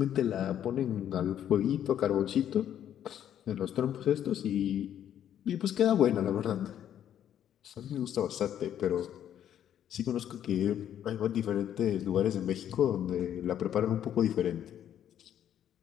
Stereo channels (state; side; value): quieter; right; 10.3 dB